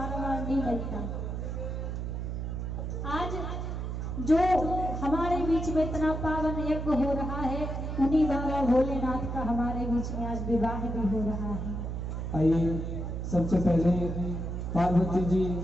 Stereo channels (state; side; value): noise; right; hum, 4 dB below the sound